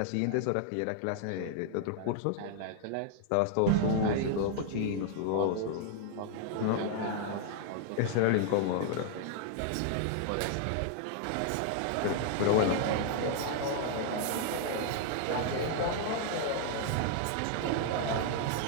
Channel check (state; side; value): different; both; correlation 0.00